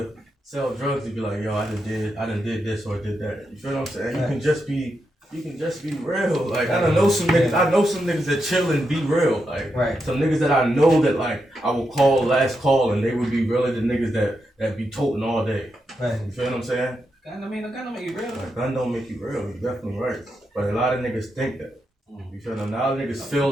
sell drugs to be like, yo, I done did this or did that. You feel what I'm saying? Right. You can just be real. Like, I know some niggas that chill and be real. Like, Right. some niggas that I know that like I will call last call and they would be really the niggas that be toting all day. Right. You feel what I'm saying? I mean, I gotta make you real. Like, gun don't make you real. You're definitely right. But a lot of niggas think that. You feel them? Now niggas feel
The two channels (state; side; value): normal; both; correlation 0.85